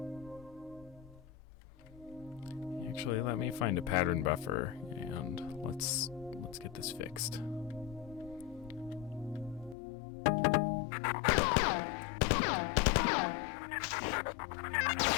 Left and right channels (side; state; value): right; drops out; at 9.8 s